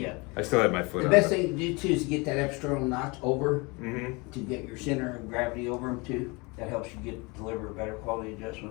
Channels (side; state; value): right; quieter; 27.5 dB